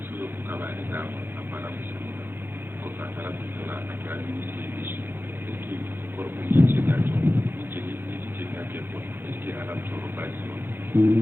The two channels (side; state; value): left; late; 0.10 ms